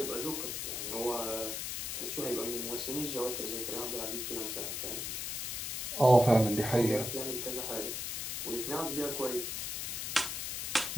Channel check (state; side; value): noise; left; hiss, 3 dB below the sound